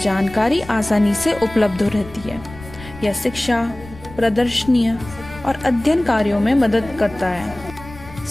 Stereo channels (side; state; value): left; noise; rumble, 17 dB below the sound